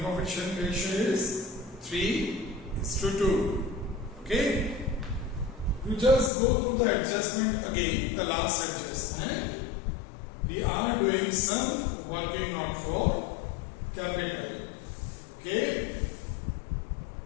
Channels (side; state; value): right; drops out; at 6.3 s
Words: profit sharing ratio is 3:2. Okay? You just go through the adjustment again, the last adjustment. We are doing some working not for capital. Okay?